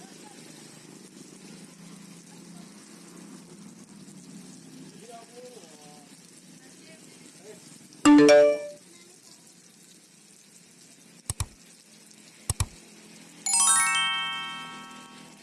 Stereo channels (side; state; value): both; identical; correlation 1.00